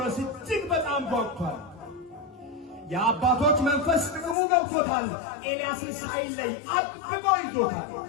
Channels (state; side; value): drops out; right; at 4.4 s